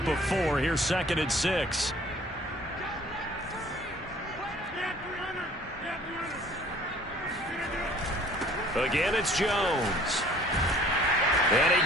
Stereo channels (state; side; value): normal; both; correlation 0.53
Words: of 4, here's 2nd and 6. Again, it's Jones. And